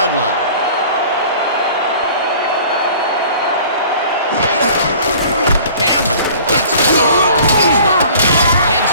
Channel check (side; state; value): both; inverted; correlation -0.48